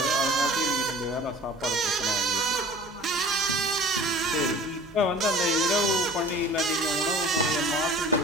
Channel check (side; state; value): right; noise; hum, 26 dB below the sound